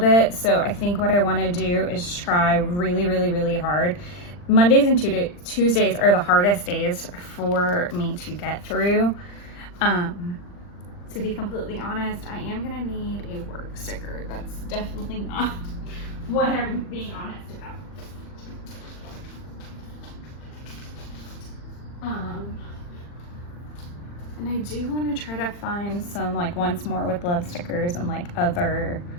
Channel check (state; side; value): late; right; 40 ms